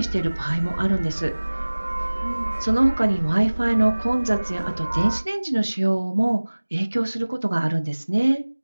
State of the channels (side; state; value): both; inverted; correlation -1.00